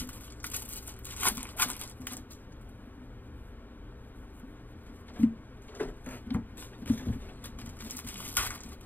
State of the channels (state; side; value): late; right; 0.087 ms